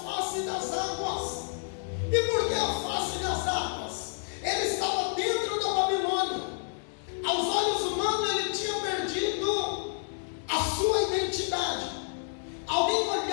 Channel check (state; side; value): silent; right; digital silence